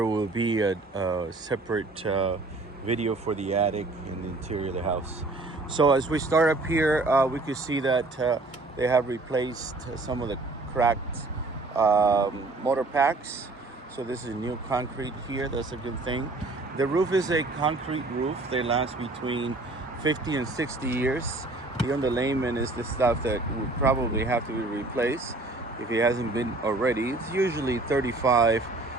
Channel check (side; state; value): left; quieter; 3.1 dB